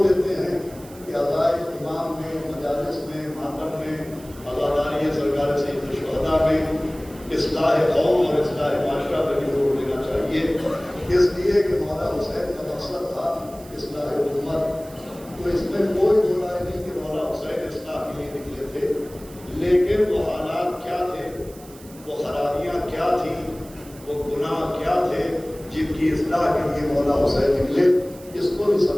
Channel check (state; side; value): noise; right; hiss, 21 dB below the sound